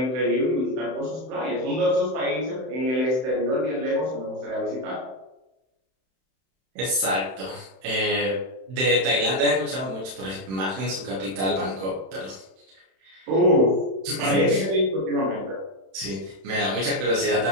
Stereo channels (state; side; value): late; left; 31 ms